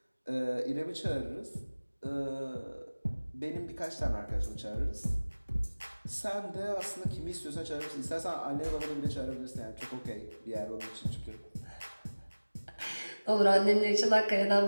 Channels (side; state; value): both; inverted; correlation -1.00